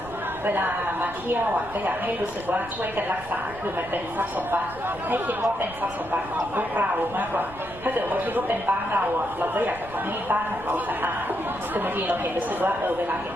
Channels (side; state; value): right; noise; rumble, 17 dB below the sound